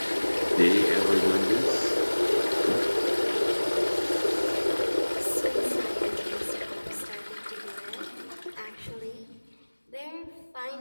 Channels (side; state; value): both; inverted; correlation -1.00